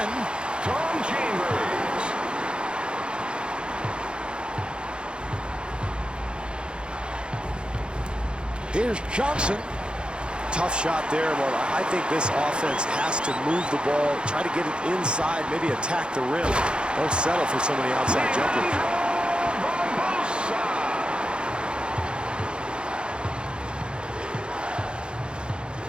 Tom Chambers. Here's Johnson. Tough shot there, but I think this offense has to move the ball, try to get it inside, maybe attack the rim. Don't settle for so many outside jumpers.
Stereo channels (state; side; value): late; left; 0.053 ms